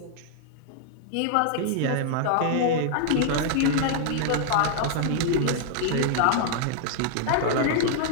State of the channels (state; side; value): different; both; correlation -0.01